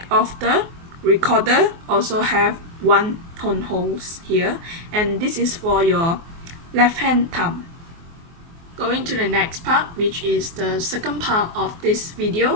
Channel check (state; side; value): late; left; 24 ms